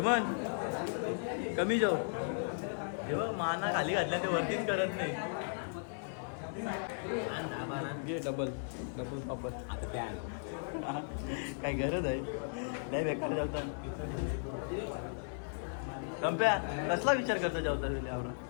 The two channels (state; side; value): silent; right; digital silence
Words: कमी जाऊ. हे बघ माना खाली घातल्या ते वरतीच करत नाही. घे डबल पापड. काय गरज आहे? नाही बेकार जेवता. कंप्या कसला विचार करतो जेवता वेळी? आवडा